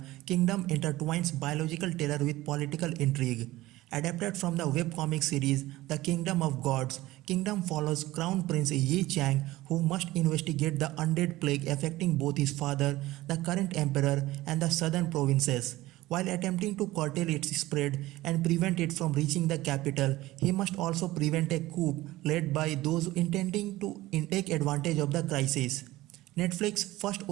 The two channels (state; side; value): quieter; left; 17.6 dB